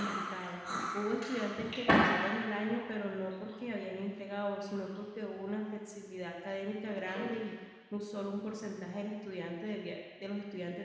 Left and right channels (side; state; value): both; identical; correlation 1.00